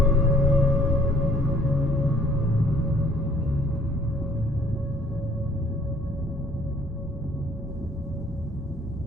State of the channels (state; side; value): normal; both; correlation 0.58